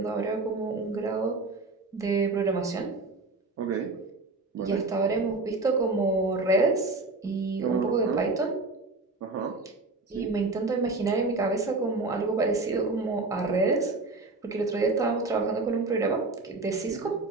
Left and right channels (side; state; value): left; quieter; 3.4 dB